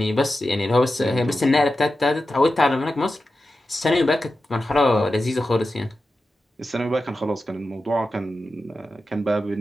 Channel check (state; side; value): normal; both; correlation 0.92